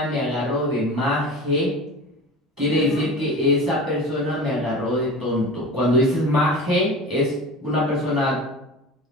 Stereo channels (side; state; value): both; normal; correlation 0.33